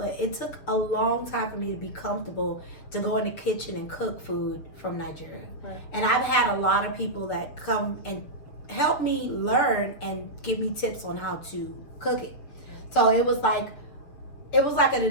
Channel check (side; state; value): right; late; 7.1 ms